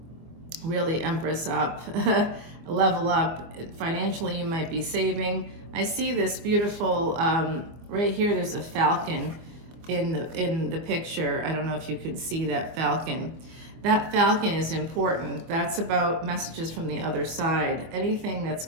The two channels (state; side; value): late; left; 24 ms